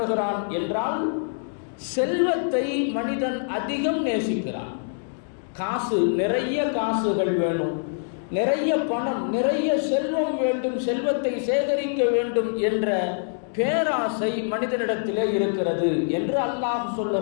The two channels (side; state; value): right; silent; digital silence